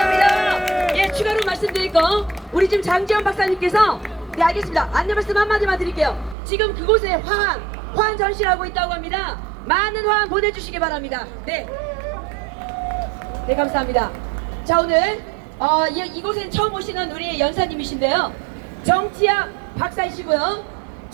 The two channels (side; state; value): left; drops out; at 6.4 s